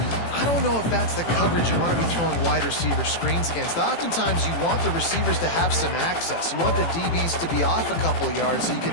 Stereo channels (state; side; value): late; right; 18 ms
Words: I don't know if that's the coverage you want to be throwing wide receiver screens against. Oftentimes, you want the receivers to have some access. You want the DBs to be off a couple of yards so you can